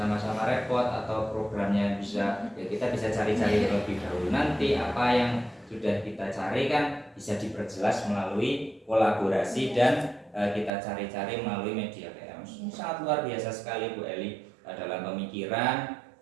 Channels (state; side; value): drops out; left; at 10.7 s